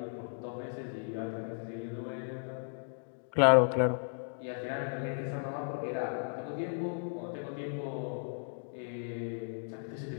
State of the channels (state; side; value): silent; right; digital silence